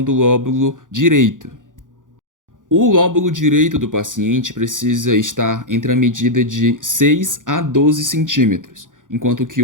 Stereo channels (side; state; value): left; late; 0.88 ms